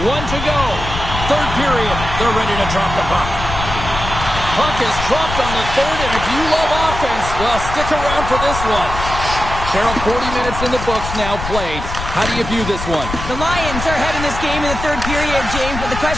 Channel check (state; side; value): noise; left; rumble, 7 dB below the sound